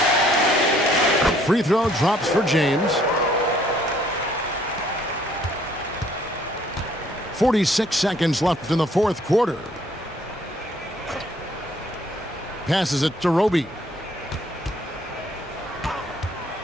Free throw drops for James. 46 seconds left in the fourth quarter. Passes it to Roby.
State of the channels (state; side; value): normal; both; correlation 0.62